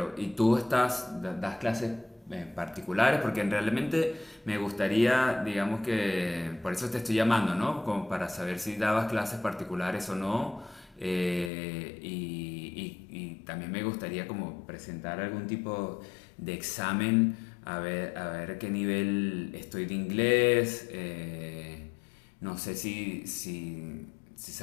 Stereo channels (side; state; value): right; drops out; at 11.5 s